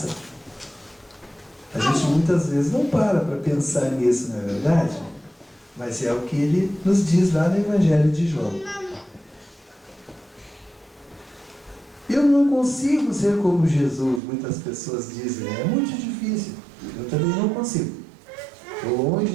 A gente muitas vezes não para pensar nisso, não é verdade? Mas é o que Ele nos diz lá no Evangelho de João. Eu não consigo ser como Jesus, muitas pessoas dizem, né? É muito difícil. Eu também não consigo. Estou longe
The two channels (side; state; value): left; drops out; at 14.2 s